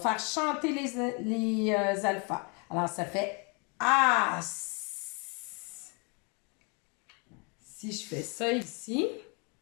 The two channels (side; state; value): right; quieter; 33.0 dB